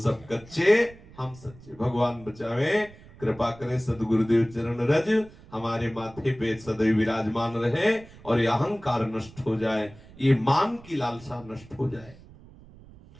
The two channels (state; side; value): noise; right; rumble, 21 dB below the sound